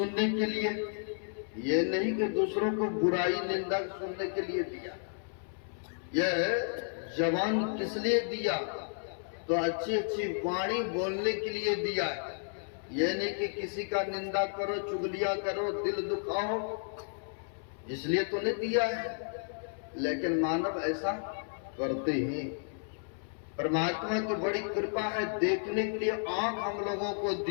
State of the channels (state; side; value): silent; right; 56 dB below the other